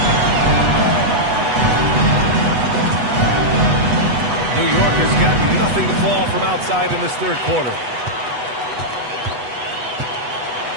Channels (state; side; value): late; left; 8.1 ms